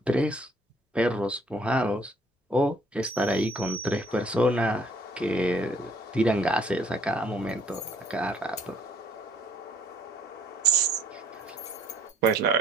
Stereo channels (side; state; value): both; normal; correlation 0.61